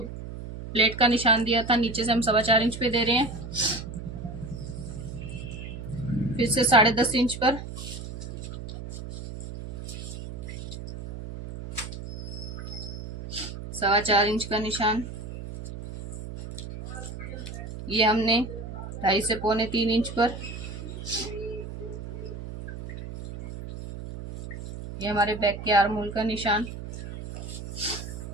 का निशान दिया था, नीचे से हम 4.25 इंच पे दे रहे हैं। फिर से 10.5 इंच पर 4.25 इंच का निशान। ये हमने 2.5 से 2.25 इंच पर, ये हमारे बैक के आर्म होल का निशान।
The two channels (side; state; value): right; noise; hum, 9 dB below the sound